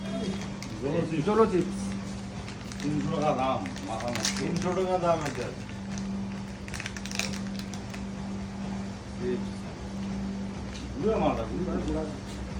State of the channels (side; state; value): both; identical; correlation 1.00